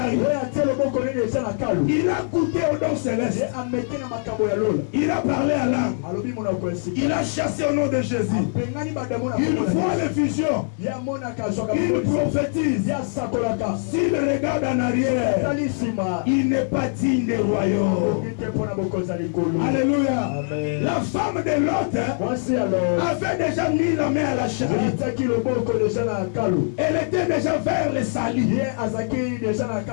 il a goûté au don céleste. Il a parlé à l'âme. Il a chassé au nom de Jésus. Il voit les visions. Il prophétise. S'il regarde en arrière, il n'est pas digne du royaume. Alléluia. Amen. La femme de Lot avait déjà mis la main à la charrue. Elle était déjà vers le salut.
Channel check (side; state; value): right; silent; digital silence